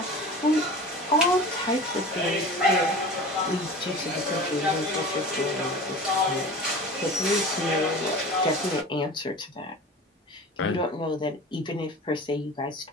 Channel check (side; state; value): both; normal; correlation 0.36